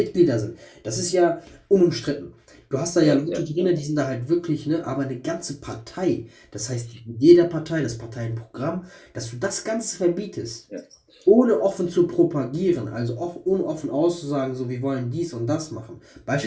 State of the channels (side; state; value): both; identical; correlation 1.00